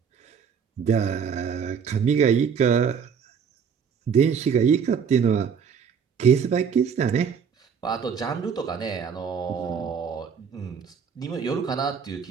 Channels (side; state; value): left; quieter; 6.8 dB